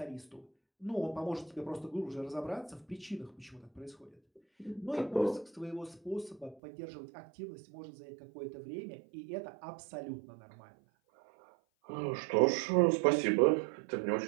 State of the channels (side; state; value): left; drops out; at 6.6 s